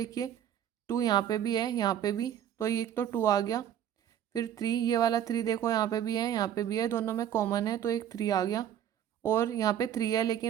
2 यहाँ पे भी है, यहाँ पे भी, तो ये एक तो 2 आ गया। फिर 3, ये वाला 3 देखो यहाँ पे भी है, यहाँ पे भी है, दोनों में कॉमन है, तो एक 3 आ गया। और यहाँ पे 3 है,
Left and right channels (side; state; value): left; quieter; 10.3 dB